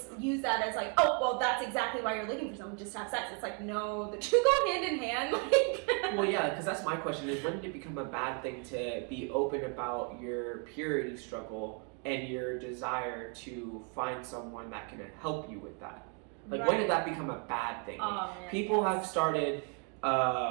use that as like, oh, well, that's exactly why you're looking for someone, just to have sex. It's like, no, the two go hand in hand. Well, yeah, because that's my question is, when did it become a bad thing to be open about your purity struggle and your desire to find someone that can help you with that? Like, when did that become a bad thing? Like, people have started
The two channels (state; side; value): quieter; left; 38.7 dB